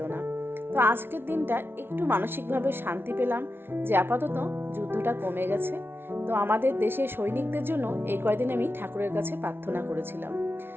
না। তো আজকের দিনটা একটু মানসিকভাবে শান্তি পেলাম যে আপাতত যুদ্ধটা কমে গেছে। তো আমাদের দেশের সৈনিকদের জন্য এই কয়দিন আমি ঠাকুরের কাছে প্রার্থনা করেছিলাম।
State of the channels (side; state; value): left; late; 0.11 ms